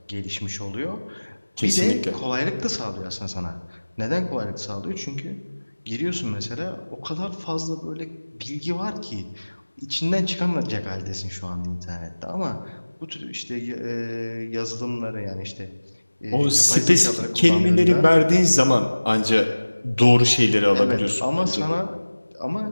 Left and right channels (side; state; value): both; inverted; correlation -1.00